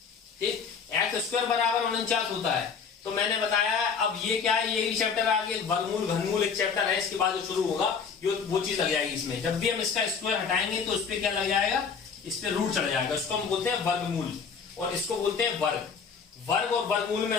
ठीक, x² बराबर 49 होता है। तो मैंने बताया अब ये क्या है, ये चैप्टर आगे वर्गमूल घनमूल एक चैप्टर है, इसके बाद जो शुरू होगा ये वो चीज लग जाएगी इसमें। जब भी हम इसका स्क्वायर हटाएंगे तो उस पर क्या लग जाएगा, इस पे रूट चढ़ जाएगा, इसको हम बोलते हैं वर्गमूल और इसको बोलते हैं वर्ग। वर्ग और वर्गमूल में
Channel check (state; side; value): quieter; right; 6.0 dB